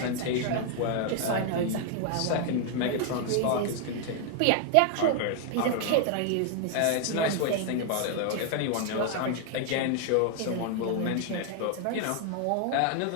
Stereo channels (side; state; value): both; different; correlation 0.00